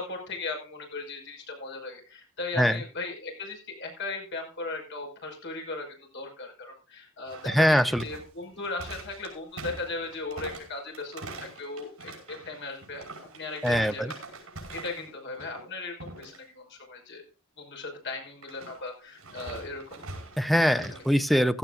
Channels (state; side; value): normal; both; correlation 0.75